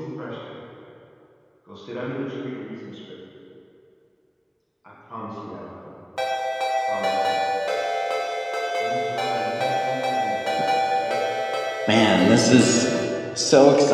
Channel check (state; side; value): identical; both; correlation 1.00